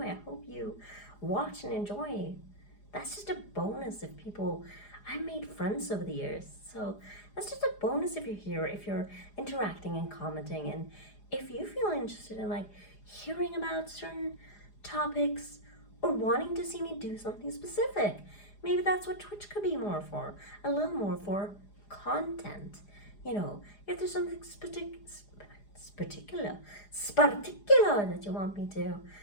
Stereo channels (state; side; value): late; right; 4.9 ms